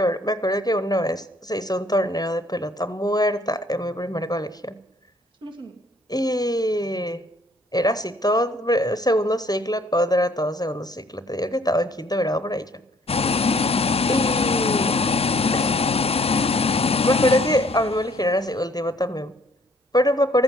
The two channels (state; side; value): normal; both; correlation 0.61